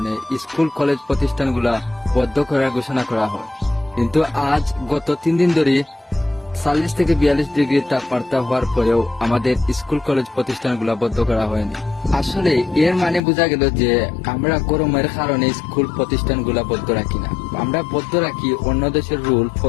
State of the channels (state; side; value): drops out; right; at 13.2 s